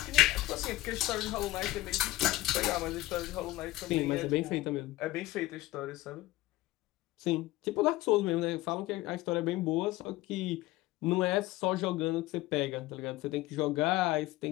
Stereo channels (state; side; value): quieter; right; 17.6 dB